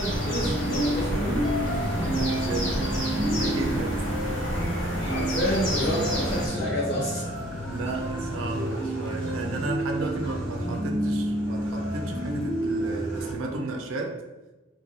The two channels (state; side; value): normal; both; correlation 0.59